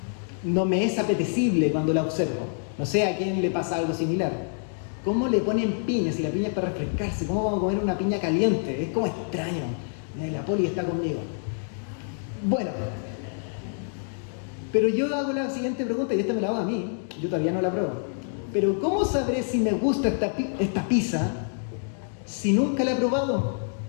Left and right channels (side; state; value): right; silent; digital silence